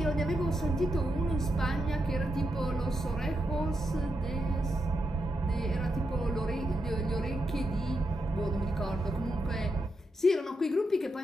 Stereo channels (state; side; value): normal; both; correlation 0.84